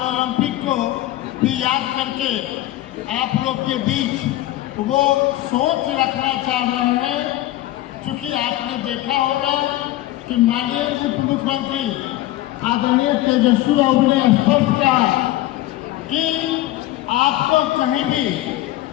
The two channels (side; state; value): right; quieter; 15.7 dB